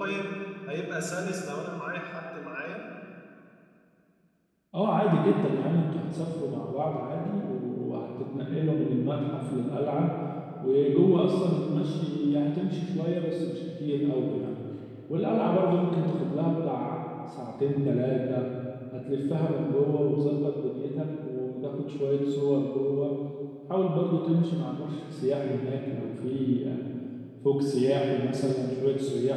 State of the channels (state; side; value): identical; both; correlation 1.00